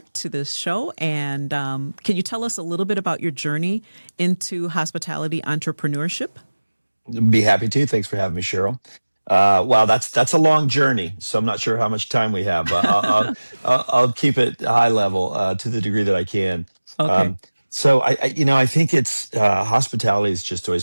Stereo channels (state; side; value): inverted; both; correlation -1.00